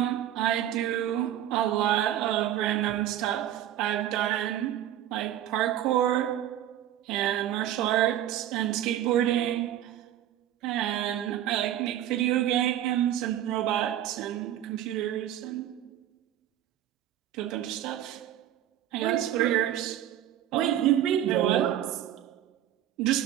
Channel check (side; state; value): left; quieter; 11.8 dB